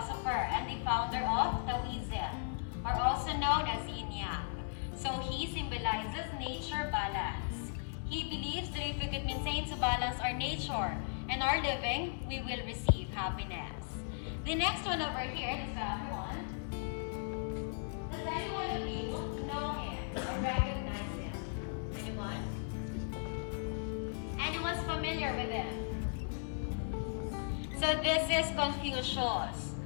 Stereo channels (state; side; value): silent; right; digital silence